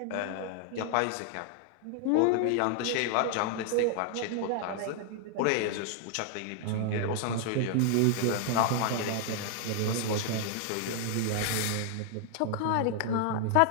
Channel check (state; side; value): different; both; correlation 0.00